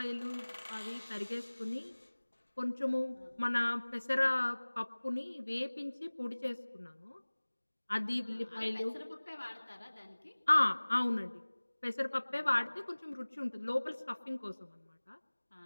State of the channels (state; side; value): inverted; both; correlation -1.00